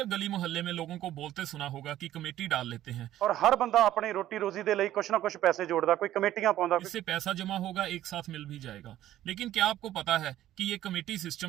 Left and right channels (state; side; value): quieter; left; 13.2 dB